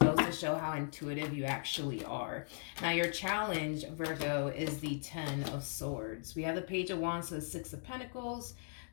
to show how intuitive you actually are. Now, your challenge, Virgo, is the Ten of Swords. We have the Page of Wands to the Six of Pentacles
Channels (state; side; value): silent; right; digital silence